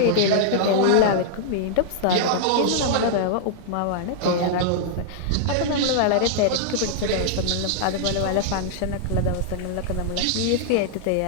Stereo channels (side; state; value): both; different; correlation -0.01